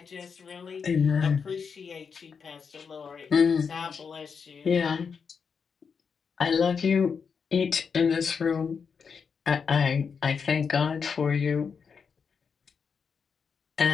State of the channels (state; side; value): quieter; right; 6.0 dB